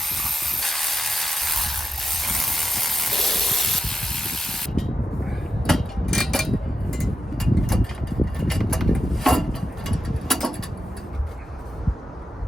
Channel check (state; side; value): normal; both; correlation 0.91